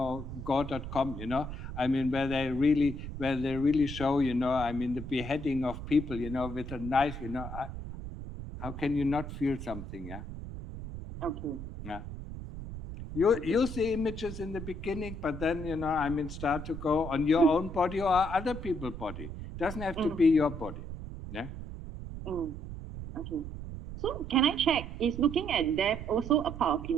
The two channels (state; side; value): noise; right; rumble, 9 dB below the sound